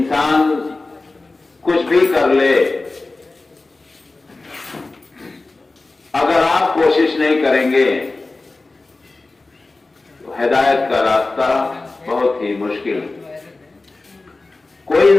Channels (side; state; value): right; quieter; 3.4 dB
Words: کچھ بھی کر لے، اگر آپ کوشش نہیں کریں گے تو ہدایت کا راستہ بہت ہی مشکل ہے۔ کوئی